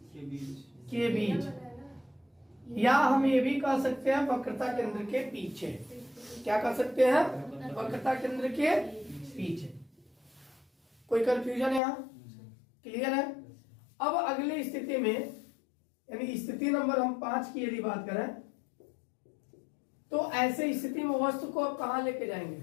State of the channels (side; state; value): right; drops out; at 11.8 s